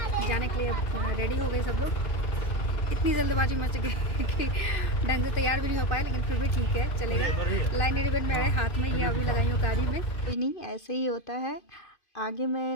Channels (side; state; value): right; late; 2.5 ms